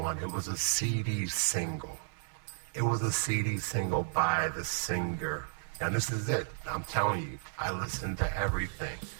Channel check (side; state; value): left; silent; 56 dB below the other